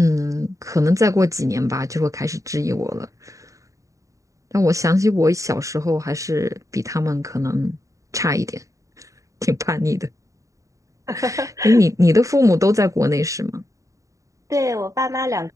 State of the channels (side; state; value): left; late; 0.16 ms